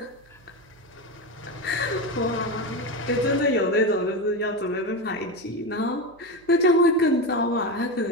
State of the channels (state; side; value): noise; right; hum, 30 dB below the sound